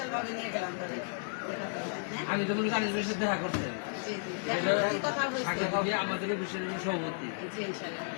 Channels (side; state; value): right; silent; 56 dB below the other